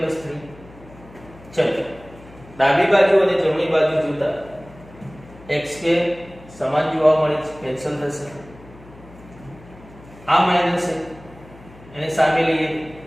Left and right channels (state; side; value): noise; left; hum, 21 dB below the sound